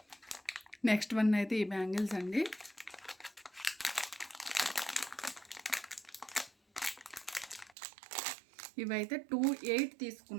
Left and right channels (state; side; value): drops out; left; at 7.8 s